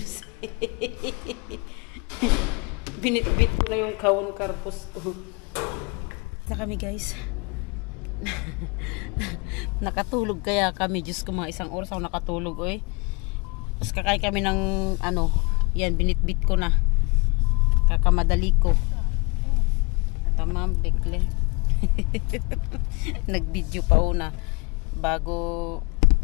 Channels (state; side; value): quieter; right; 28.6 dB